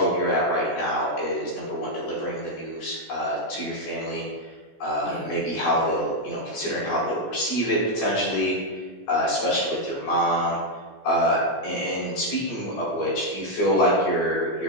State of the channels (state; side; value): late; right; 17 ms